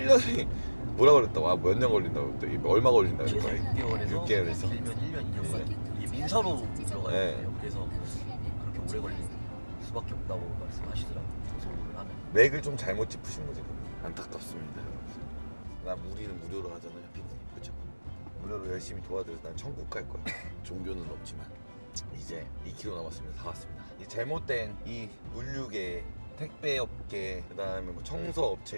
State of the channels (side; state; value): both; inverted; correlation -1.00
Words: 뭐라 그랬다고 몇 년 걸린다고 또 얼마 걸린다고 최소 6개월에서 길면 1년 2년까지 이게 민사로 들어가야 돼요. 그래서 그렇게 오래 걸릴 수밖에 없다고 말씀하시더라고요. 고소를 하면 맥을 좀 잘못 짚으신 거지. 안타깝습니다 여러분. 우리는 무료로 하잖아요 피디님. 그쵸? 무료로 열심히 도와드려서 난 천국 갈 거야. 종교는 없지만 이제 2km 남았습니다. 다 왔습니다. 이 잘못된 이 물류계 택배업계 그 다음에 뭐